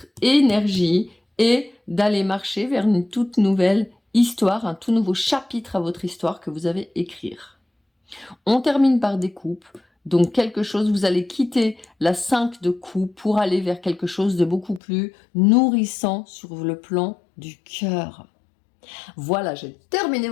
énergie et d'aller marcher vers une toute nouvelle histoire, un tout nouveau chapitre à votre histoire que vous avez écrire. On termine par des coupes. Donc quelque chose, vous allez quitter la 5 de coupe pour aller vers quelque chose de beaucoup plus nourrissant sur le plan du cœur. Voilà, j'ai terminé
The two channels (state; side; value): drops out; right; at 14.8 s